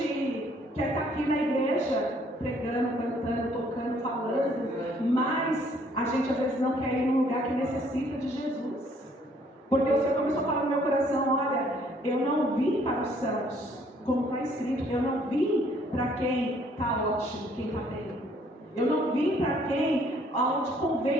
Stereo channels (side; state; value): both; normal; correlation 0.63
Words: quer estar aqui na igreja, pregando, cantando, tocando, falando, mas a gente às vezes não quer ir num lugar que necessita de Jesus. Porque o Senhor começou a falar no meu coração, olha, eu não vim para os sãos, como está escrito, eu não vim para quem está ótimo, quem está bem. Eu não vim para quem, onde